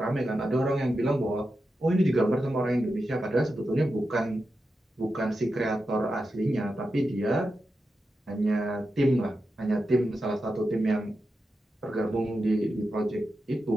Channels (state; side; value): normal; both; correlation 0.89